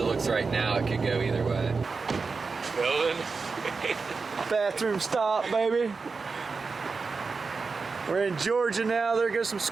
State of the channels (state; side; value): quieter; left; 4.6 dB